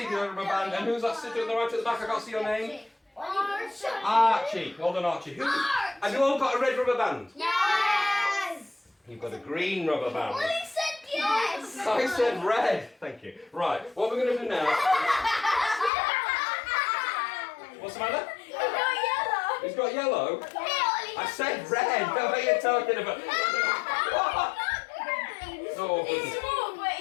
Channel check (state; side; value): drops out; right; at 15.9 s